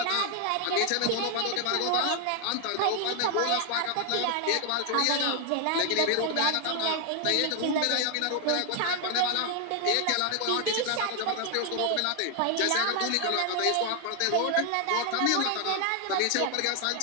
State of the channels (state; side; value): different; both; correlation 0.00